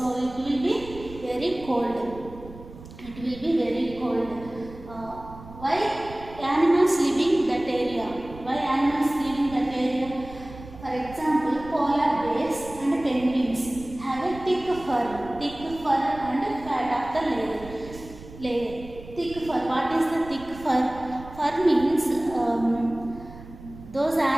it will be very cold. Why animals living that area? For example, polar bears and penguins have a thick fur and fat of the layer. Thick fur. What is the thick fur? Fur means those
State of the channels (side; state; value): right; noise; rumble, 16 dB below the sound